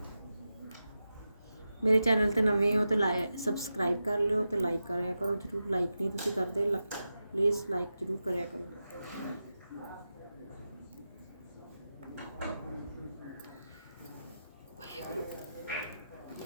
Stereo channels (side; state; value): both; inverted; correlation -0.91